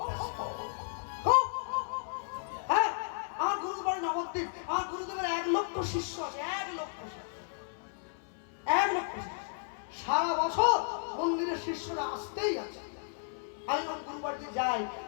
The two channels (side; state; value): right; silent; 55 dB below the other